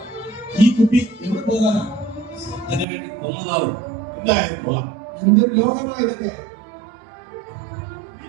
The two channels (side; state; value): left; drops out; at 2.9 s